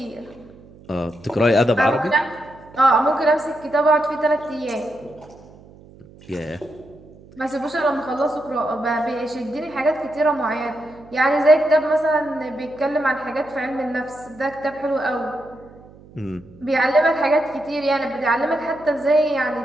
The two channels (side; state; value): right; noise; hum, 23 dB below the sound